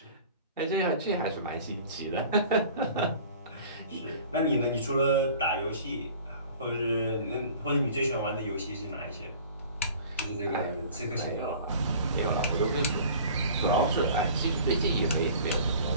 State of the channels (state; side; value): inverted; both; correlation -0.45